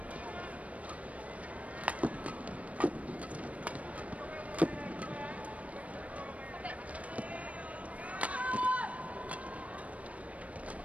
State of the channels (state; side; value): late; left; 0.066 ms